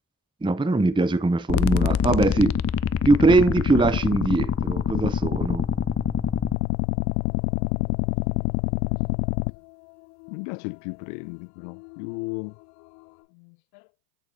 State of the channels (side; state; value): right; drops out; at 6.6 s